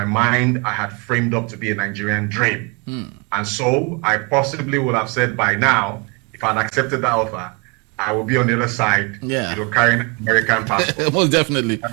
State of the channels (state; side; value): quieter; left; 30.7 dB